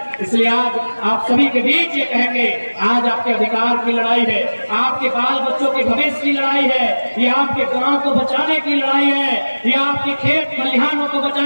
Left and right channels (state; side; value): inverted; both; correlation -1.00